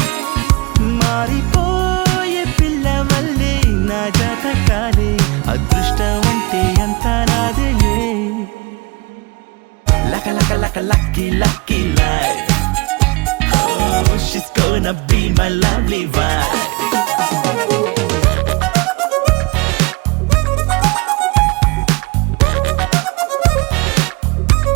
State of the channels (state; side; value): quieter; left; 26.3 dB